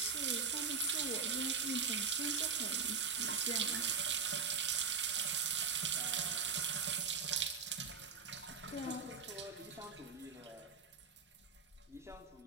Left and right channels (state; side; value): quieter; left; 5.9 dB